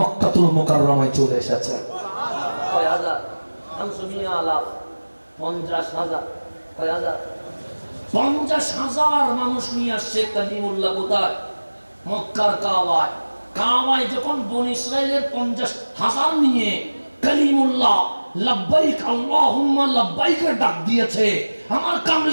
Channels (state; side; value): inverted; both; correlation -1.00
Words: মুকাররমায় চলে এসেছে। কয় হাজার? 500,000, 50,000, কয় হাজার? 50,000 মানুষ নিয়ে আসছে কালিমুল্লাহ। কোথায়? মক্কার কাবায়। কাবায় যখন বনি ইসরাইলের 50,000 নিয়ে কালিমুল্লাহ লাব্বাইক আল্লাহুম্মা লাব্বাইকের ডাক দিয়েছে, আমার